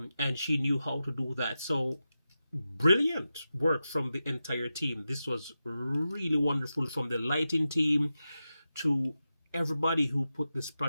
she knew how to do that. So brilliant work from the entire team. This was really wonderful, from the lighting team to everybody who put this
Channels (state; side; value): inverted; both; correlation -0.91